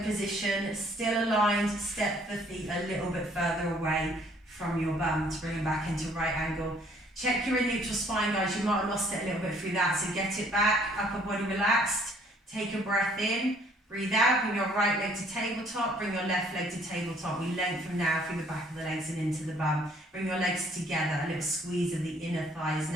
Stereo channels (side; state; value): both; normal; correlation 0.61